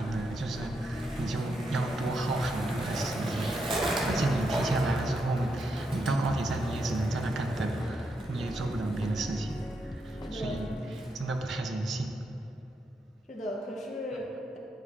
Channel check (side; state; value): both; normal; correlation 0.82